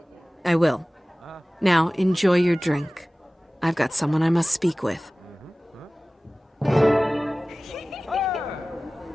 I will. Now, enjoy your drink. I've got someone I must speak with.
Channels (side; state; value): both; normal; correlation 0.98